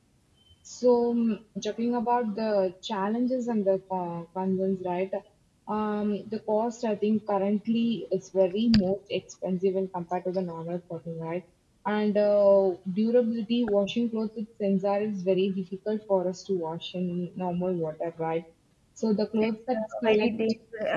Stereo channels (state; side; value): identical; both; correlation 1.00